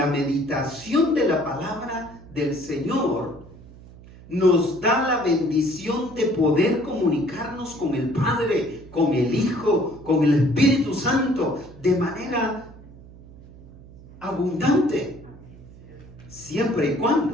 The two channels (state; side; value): noise; right; hum, 20 dB below the sound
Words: meditación de la palabra del Señor nos da la bendición de poder comunicarnos con el Padre, con el Hijo, con el Espíritu Santo de manera abundante, siempre y